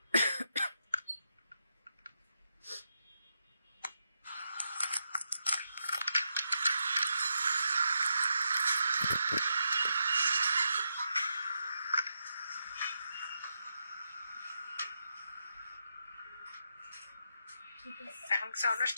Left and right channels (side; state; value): both; inverted; correlation -0.83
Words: এখন কি সাউন্ড